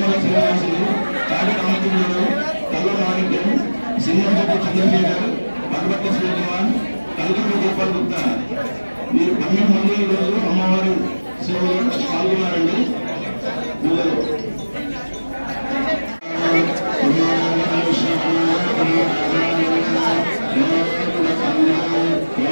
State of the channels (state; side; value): inverted; both; correlation -1.00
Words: శ్రీనివాసులు, కాడి రామచంద్రుడు, కల్ల మాణిక్యం, సింహంశెట్టి చంద్రశేఖర్, పల్వట్ల శ్రీకుమార్, కల్కూరు గోపాల్ గుప్తా, మీరు 12 మంది ఈరోజు అమ్మవారి సేవలో పాల్గొన్నారండి. పూజలు